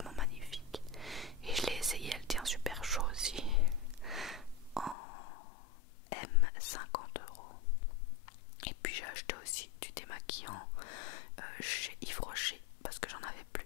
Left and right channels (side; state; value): right; drops out; at 5.0 s